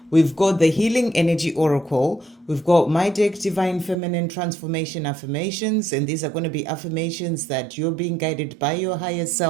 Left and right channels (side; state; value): left; drops out; at 4.0 s